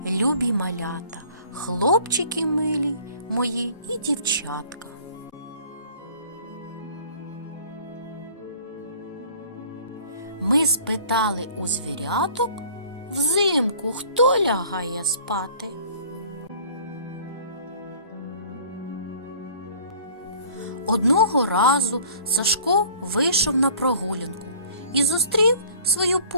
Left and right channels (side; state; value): both; inverted; correlation -0.51